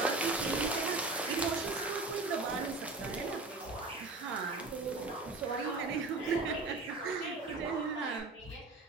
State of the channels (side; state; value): left; quieter; 3.4 dB